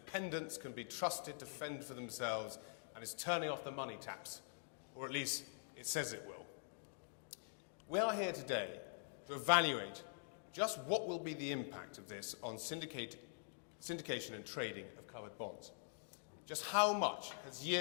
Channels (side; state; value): right; silent; digital silence